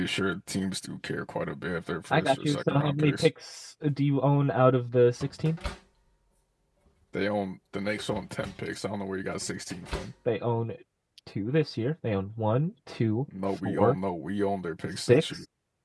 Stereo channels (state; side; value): identical; both; correlation 1.00